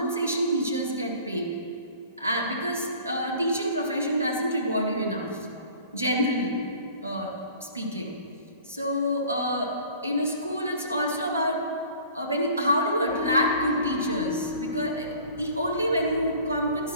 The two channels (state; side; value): inverted; both; correlation -0.48